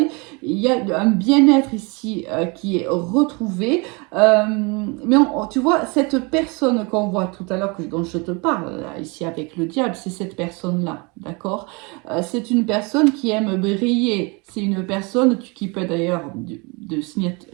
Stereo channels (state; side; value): quieter; left; 29.4 dB